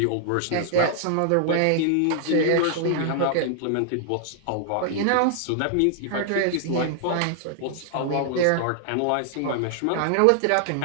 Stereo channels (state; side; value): different; both; correlation 0.00